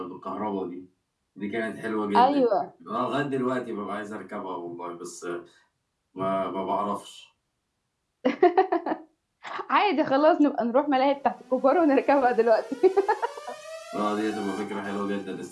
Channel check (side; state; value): both; identical; correlation 1.00